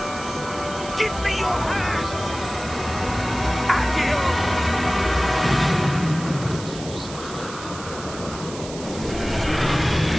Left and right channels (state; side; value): noise; right; hiss, 13 dB below the sound